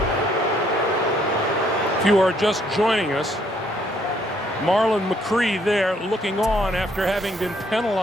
If you are just joining us, Marlon McCree there looking on after having been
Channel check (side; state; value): both; normal; correlation 0.67